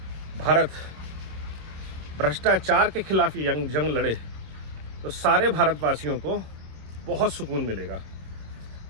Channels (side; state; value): left; late; 26 ms